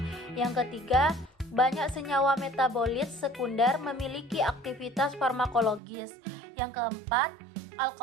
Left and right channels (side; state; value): left; drops out; at 5.8 s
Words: Yang ketiga, banyak senyawa metabolit sekunder memiliki aktivitas farmakologis. Yang keempat,